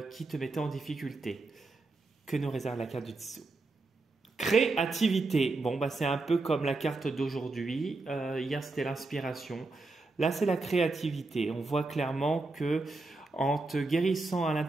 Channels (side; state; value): left; quieter; 3.4 dB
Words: te mettait en difficulté. Que nous réserve la carte du dessous? Créativité. Bon, c'est un peu comme la carte d'aujourd'hui. Hier, c'était l'inspiration. Là, c'est la créativité. On voit clairement que en te guérissant à